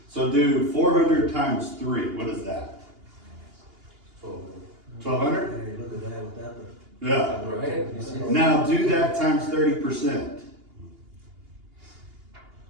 So do 400 times 3, what is that? 1200? Hey, look at that with that. Yeah. Right? Now do that times 30%.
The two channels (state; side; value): late; left; 2.8 ms